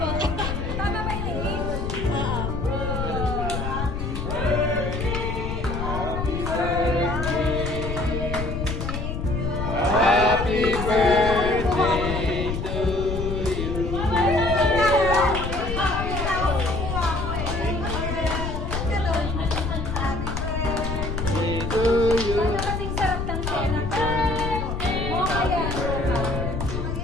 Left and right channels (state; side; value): noise; left; rumble, 4 dB below the sound